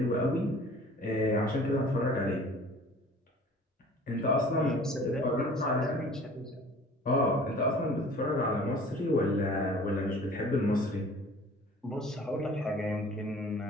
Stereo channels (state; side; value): normal; both; correlation 0.48